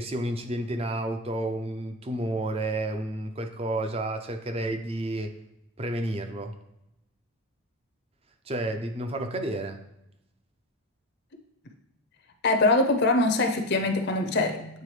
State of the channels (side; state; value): both; normal; correlation 0.21